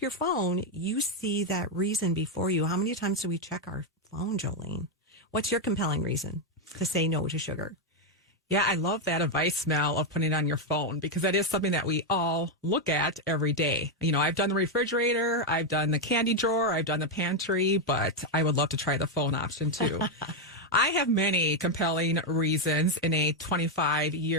your phone, you see that reason before you. How many times do we check our phone, Jolene? What's your compelling reason to say no to sugar? Yeah, I love that advice, Mel, of putting it on your phone because that is something that we all look at every day. I've done the refrigerator, I've done the candy drawer, I've done the pantry, but I would love to try the phone option too. I have many compelling reasons in a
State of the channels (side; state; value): both; normal; correlation 0.03